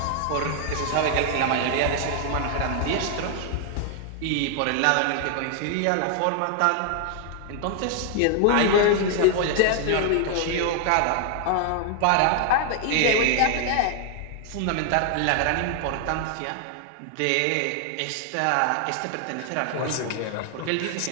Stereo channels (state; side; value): different; both; correlation 0.00